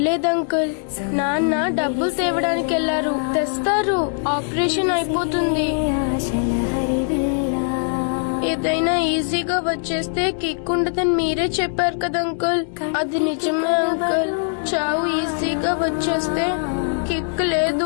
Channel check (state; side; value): silent; right; digital silence